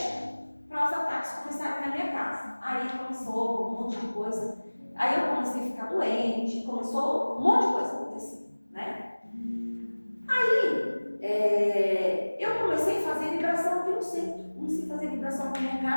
para os ataques começarem na minha casa. Aí começou um monte de coisa. Aí eu comecei a ficar doente, começou um monte de coisa a acontecer, né? Aí eu comecei a fazer vibração aqui no centro. Comecei a fazer vibração na minha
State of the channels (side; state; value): both; inverted; correlation -1.00